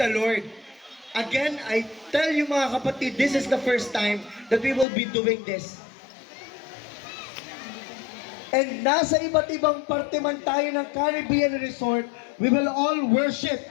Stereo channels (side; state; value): right; drops out; at 4.9 s